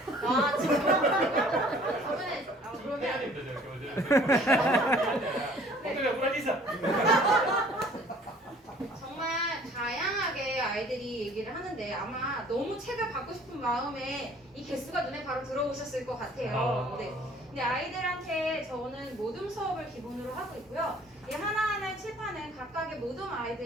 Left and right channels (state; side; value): normal; both; correlation 0.53